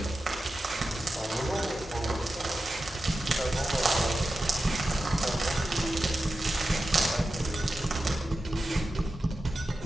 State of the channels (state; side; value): normal; both; correlation 0.92